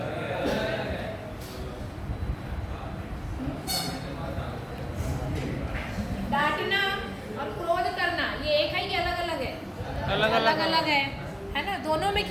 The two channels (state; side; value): identical; both; correlation 1.00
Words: डांटना और क्रोध करना ये एक है कि अलग अलग है? अलग अलग है ना। दोनों में